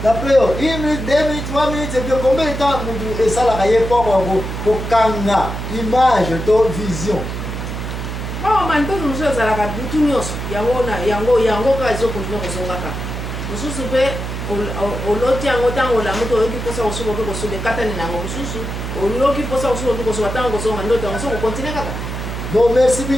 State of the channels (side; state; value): right; noise; hum, 5 dB below the sound